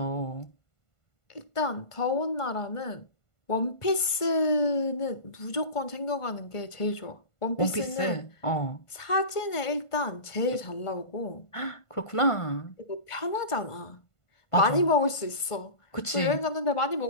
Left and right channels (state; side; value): late; right; 1.5 ms